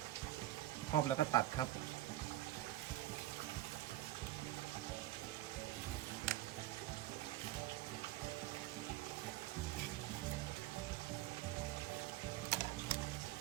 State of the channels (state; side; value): quieter; left; 15.1 dB